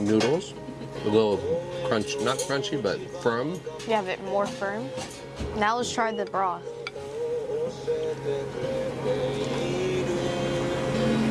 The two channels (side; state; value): both; identical; correlation 1.00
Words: A little crunch, not crunchy, but firm. You have it more firm. Now let's try the broth.